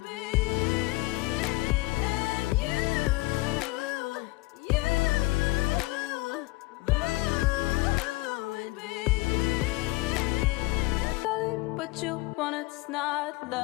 What you want, it's not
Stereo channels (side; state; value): right; quieter; 22.1 dB